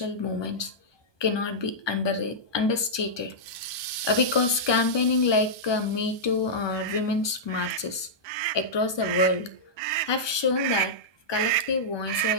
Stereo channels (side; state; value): right; late; 1.2 ms